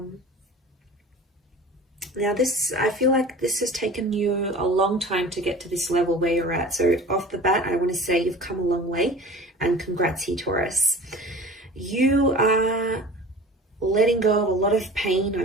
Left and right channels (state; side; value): normal; both; correlation 0.40